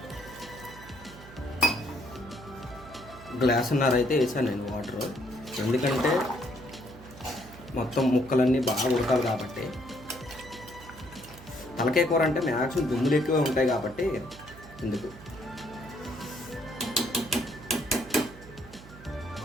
గ్లాసున్నర అయితే వేసాను నేను వాటర్. ఎందుకంటే మొత్తం ముక్కలన్నీ బాగా ఉడకాలి కాబట్టి. తలకాయ కూర అంటే మ్యాక్సిమం దుమ్ములు ఎక్కువ ఉంటాయి కాబట్టి ఎందుకు.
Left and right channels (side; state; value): right; noise; hum, 18 dB below the sound